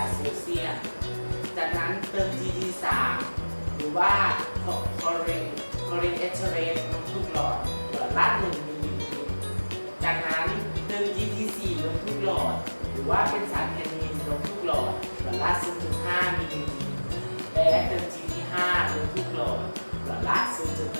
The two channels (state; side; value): inverted; both; correlation -1.00